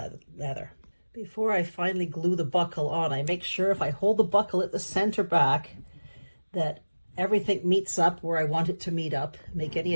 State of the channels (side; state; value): both; inverted; correlation -1.00